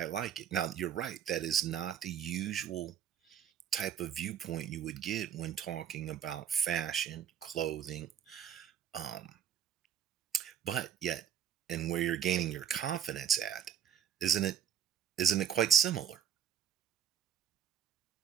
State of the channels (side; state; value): left; quieter; 9.0 dB